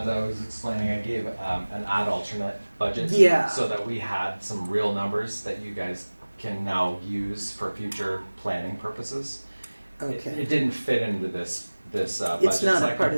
I was explaining, I gave an ad alternate budget. Yeah. So that we had some real numbers that you guys can now use for future planning purposes. Okay. It didn't fit into this budget It's not a cycle. part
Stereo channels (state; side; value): inverted; both; correlation -1.00